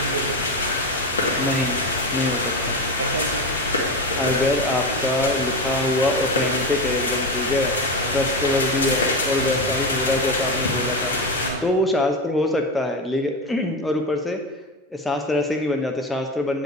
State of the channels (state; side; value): normal; both; correlation 0.18